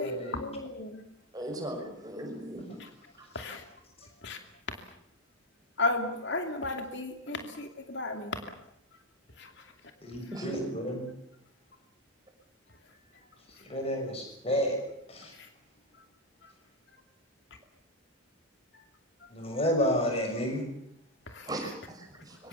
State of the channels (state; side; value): normal; both; correlation 0.04